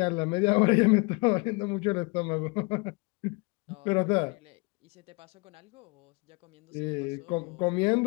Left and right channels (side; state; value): right; quieter; 29.4 dB